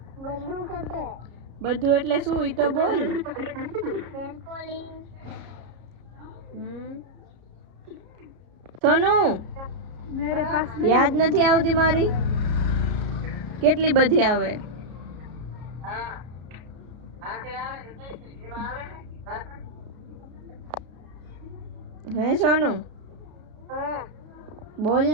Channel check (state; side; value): late; left; 33 ms